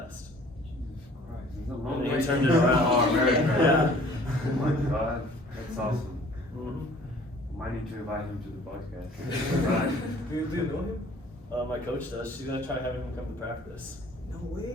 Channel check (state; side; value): normal; both; correlation 0.52